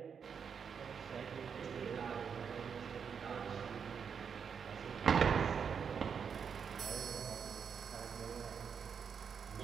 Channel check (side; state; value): left; quieter; 6.7 dB